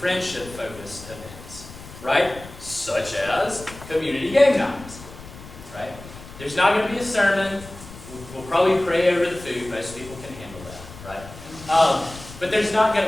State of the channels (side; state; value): left; noise; rumble, 16 dB below the sound